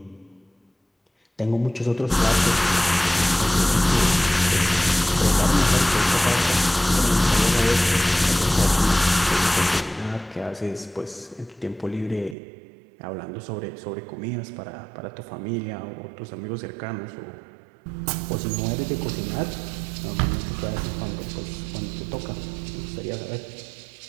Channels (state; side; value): drops out; left; at 12.4 s